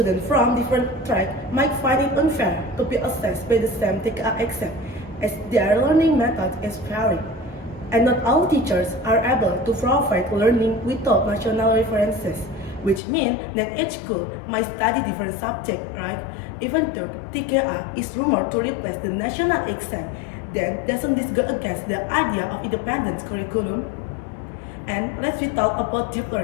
from different tracks might find it unfair to be assessed by the same TKA exam, as their learning method is varied. And not all teachers are able to provide learning without national references, which means that each school might study different subjects, right? Even though TKA is rumored to replace the national exam, then doesn't this go against the idea of independence curriculum? And let's talk about deep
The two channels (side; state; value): right; drops out; at 13.0 s